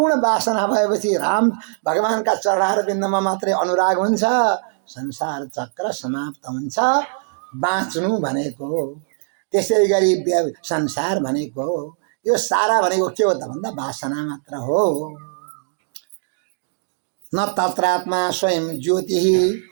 वासना भएपछि राम भगवानका चरणहरू बिन्दमा मात्रै अनुराग हुन्छ, संसार चक्र समाप्त हुन्छ। बाँच्नु भनेको त्यसै गरी संसार भनेको यो सारा भनेको के हो त भन्दा वासना मात्र हो। न तत्रात्मा स्वयं ज्योति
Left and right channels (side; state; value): left; silent; digital silence